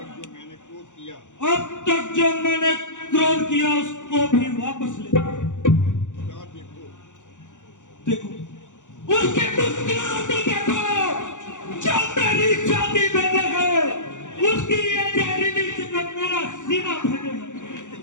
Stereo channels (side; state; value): right; late; 0.85 ms